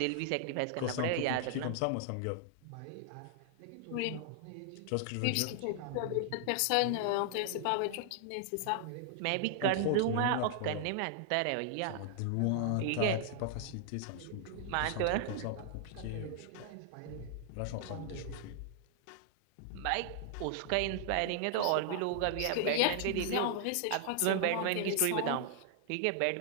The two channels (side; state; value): both; different; correlation 0.00